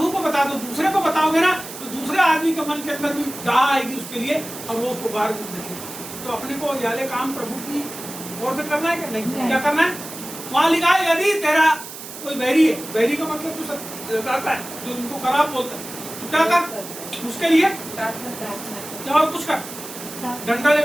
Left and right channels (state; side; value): noise; right; hiss, 12 dB below the sound